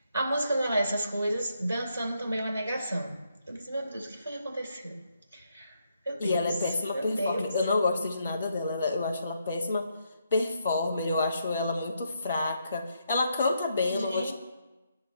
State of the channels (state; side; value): inverted; both; correlation -0.78